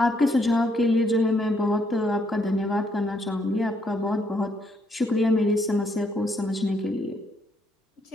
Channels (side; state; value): both; normal; correlation 0.73